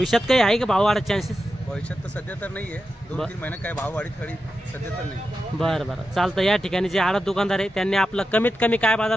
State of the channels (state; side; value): normal; both; correlation 0.90